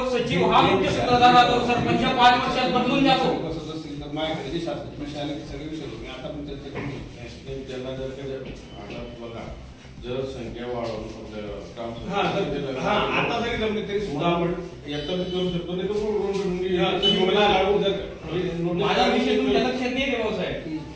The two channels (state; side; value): identical; both; correlation 1.00